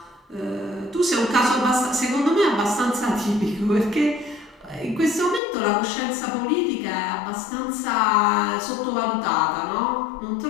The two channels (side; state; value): right; drops out; at 5.4 s